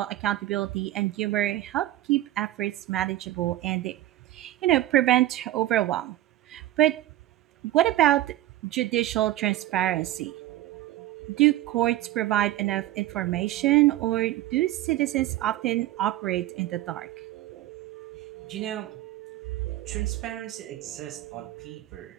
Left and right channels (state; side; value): quieter; left; 14.9 dB